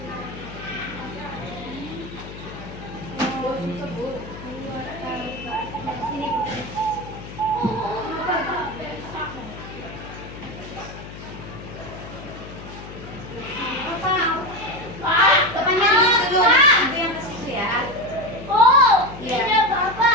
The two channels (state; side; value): noise; left; hum, 13 dB below the sound